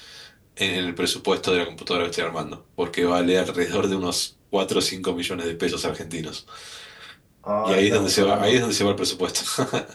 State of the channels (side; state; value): both; identical; correlation 1.00